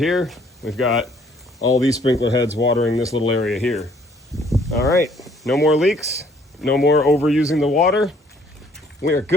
we've got all these sprinkler heads watering this little area here. All right, no more leaks, no more overusing the water. We are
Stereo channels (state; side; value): normal; both; correlation 0.62